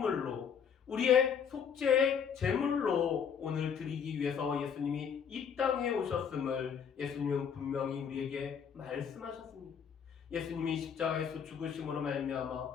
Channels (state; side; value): quieter; right; 7.2 dB